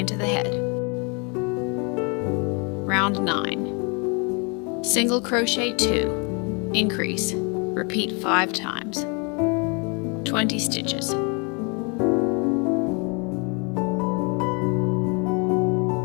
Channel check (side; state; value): right; quieter; 33.0 dB